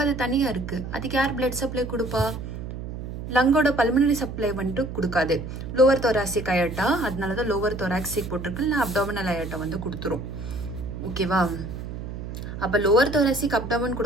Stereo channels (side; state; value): right; noise; hum, 8 dB below the sound